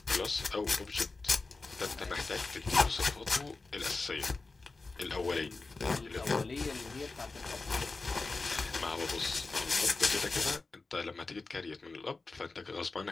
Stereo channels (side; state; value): right; quieter; 3.7 dB